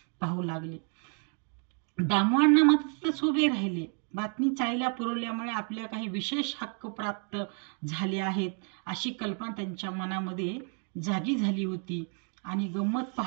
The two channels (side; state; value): left; quieter; 39.6 dB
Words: पाहू लागले. दामवांना मात्र तिथंच उभे राहिले. बातमी चाळीला पुरवल्यामुळे आपल्या काही विशेष हक्क प्राप्त झाले आहेत अशी कल्पना त्यांच्या मनामध्ये जागी झाली होती आणि गंमत